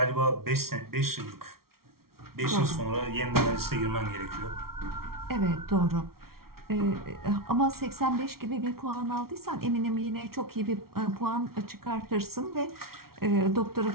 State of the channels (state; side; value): late; left; 0.94 ms